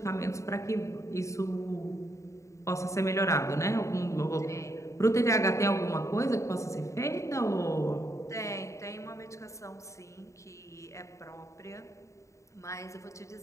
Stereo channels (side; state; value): right; late; 0.14 ms